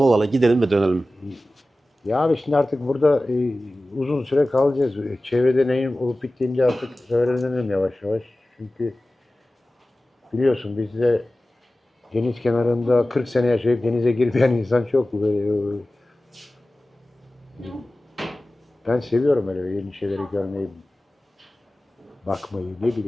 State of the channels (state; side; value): normal; both; correlation 0.96